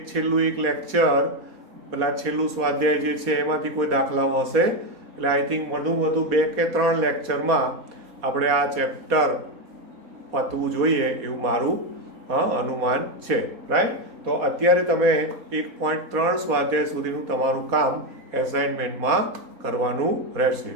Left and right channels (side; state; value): left; late; 4.2 ms